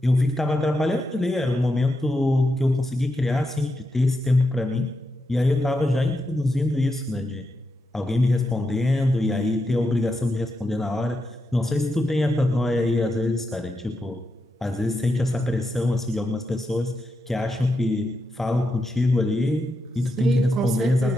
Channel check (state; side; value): normal; both; correlation 0.85